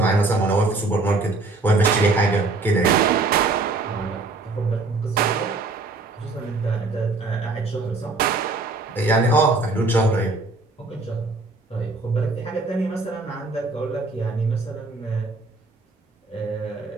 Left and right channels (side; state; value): left; quieter; 3.4 dB